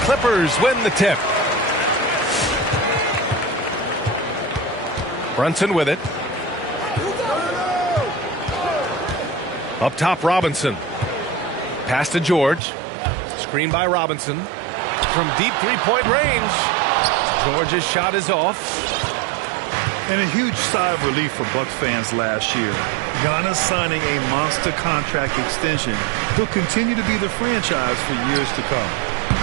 Clippers win the tip. Brunson with it. Up top, Robinson. Pass to George. Screen by Robinson. From deep three-point range. George's shot is off. And a huge sigh of relief for Bucks fans last year. Giannis signing a monster contract extension. He'll continue to be the franchise for years to come.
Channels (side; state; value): left; drops out; at 12.6 s